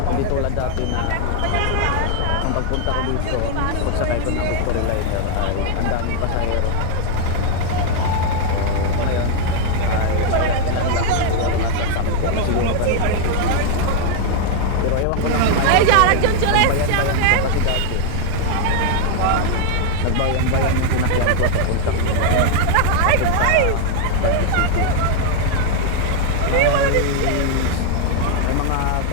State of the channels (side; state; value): both; different; correlation 0.00